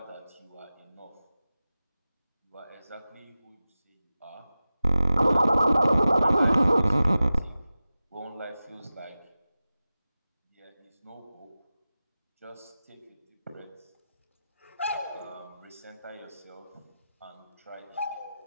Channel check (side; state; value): both; inverted; correlation -0.95